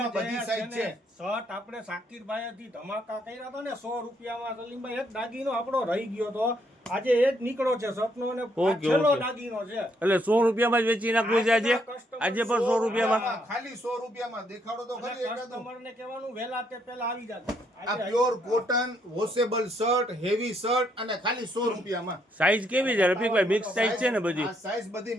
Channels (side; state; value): both; normal; correlation 0.73